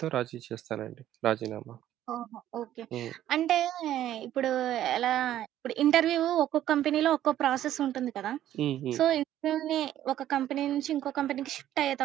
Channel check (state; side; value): quieter; left; 12.3 dB